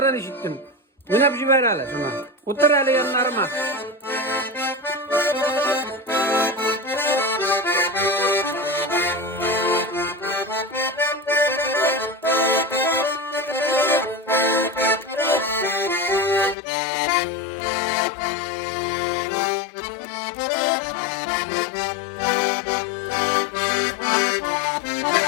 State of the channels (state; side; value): drops out; right; at 16.6 s